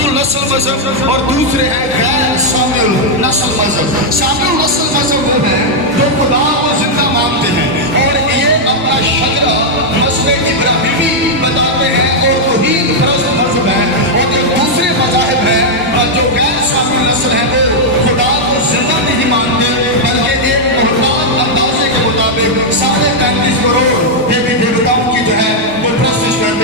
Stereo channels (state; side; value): normal; both; correlation -0.02